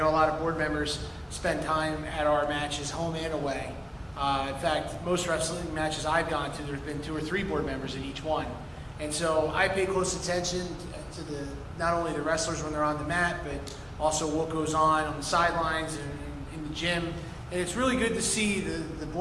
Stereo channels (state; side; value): identical; both; correlation 1.00